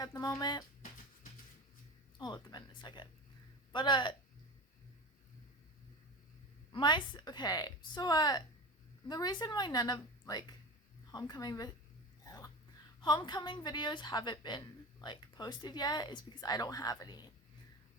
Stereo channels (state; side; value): normal; both; correlation 0.29